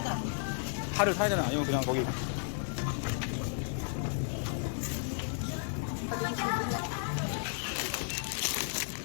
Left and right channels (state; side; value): silent; right; 55 dB below the other